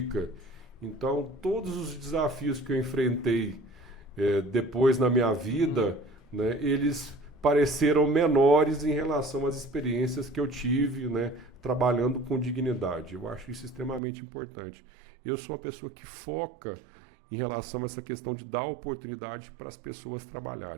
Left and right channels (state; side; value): drops out; left; at 14.0 s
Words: Então, todos os desafios que eu enfrentei depois na minha vida, né, eles pareceram menores em relação às experiências que eu tive, né, trabalhando com dignidade. Eu acho isso extremamente importante. Eu sou uma pessoa que foca em relação a essa questão de dar oportunidade para as pessoas